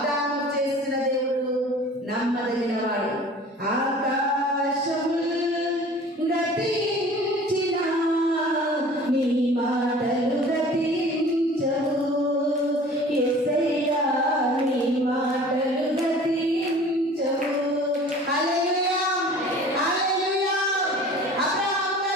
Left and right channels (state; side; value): normal; both; correlation 0.45